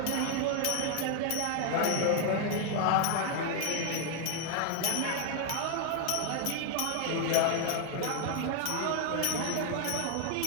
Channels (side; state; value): both; different; correlation 0.00